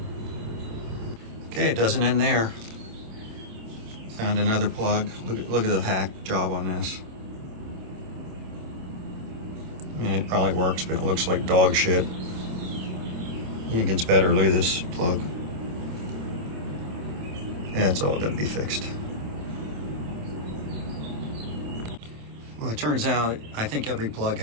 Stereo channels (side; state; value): left; late; 27 ms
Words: Okay, it doesn't end there. Found another plug. Look at the hack job on this. I mean, it probably works, but it looks like dog shit. It gets better. Look at this plug. That's all got to be fixed. Well, it turns out I think every plug